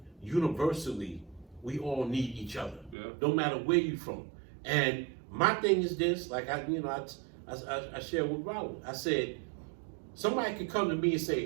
universally, we all need each other. Yeah. No matter where you're from. And my thing is this, like I shared with Rollo. I said, somebody could come to me and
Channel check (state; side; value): drops out; left; at 3.0 s